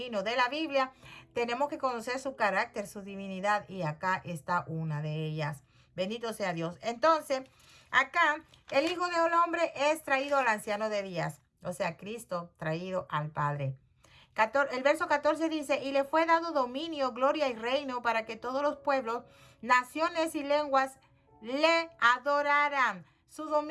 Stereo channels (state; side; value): identical; both; correlation 1.00